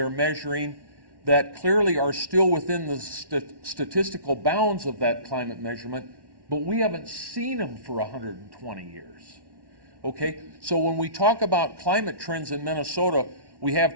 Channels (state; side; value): late; left; 1.1 ms